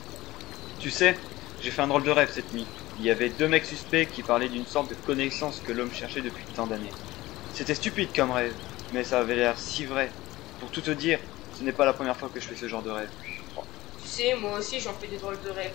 Tu sais, j'ai fait un drôle de rêve cette nuit. Il y avait deux mecs suspects qui parlaient d'une sorte de connaissance que l'homme cherchait depuis tant d'années. C'était stupide comme rêve, mais ça avait l'air si vrai. Pour tout te dire, ce n'est pas la première fois que je fais ce genre de rêve. Tu sais, moi aussi j'en fais des drôles de rêves.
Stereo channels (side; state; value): right; quieter; 18.1 dB